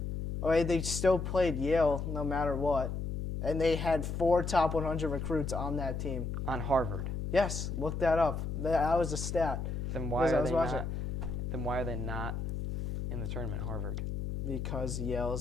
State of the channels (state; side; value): noise; left; hum, 3 dB below the sound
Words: Okay, they still played Yale no matter what, and they had 4 top 100 recruits on that team. On Harvard. Yes, look that up. That was a stat. Then why Because I are was they watching. not? Then why are they not in the tournament, Harvard? Because Yale